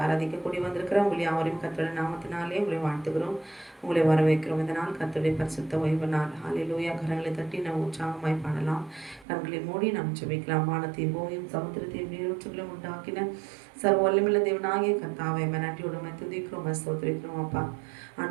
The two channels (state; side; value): drops out; left; at 9.2 s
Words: ஆராதிக்க கூடி வந்திருக்கிறோம். உங்களை யாவரையும் கர்த்தருடைய நாமத்தினாலே உங்களை வாழ்த்துகிறோம், உங்களை வரவேற்கிறோம். இந்த நாள் கர்த்தருடைய பரிசுத்த ஓய்வு நாள். ஹல்லேலூயா. கரங்களை தட்டி நாம் உற்சாகமாய் பாடலாம். கண்களை மூடி நாம் ஜெபிக்கலாம். வானத்தையும் பூமியும் சமுத்திரத்தையும் நீரூற்றுகளையும் உண்டாக்கின சர்வ வல்லமையுள்ள தேவனாகிய கர்த்தாவே, நன்றியோடு துதிக்கிறோம், ஸ்தோத்திரிக்கிறோம். அப்பா